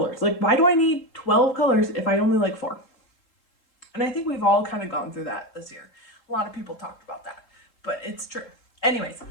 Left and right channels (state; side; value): late; right; 3.7 ms